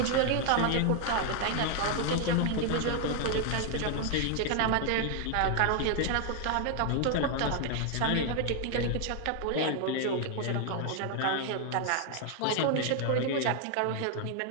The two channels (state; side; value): different; both; correlation 0.00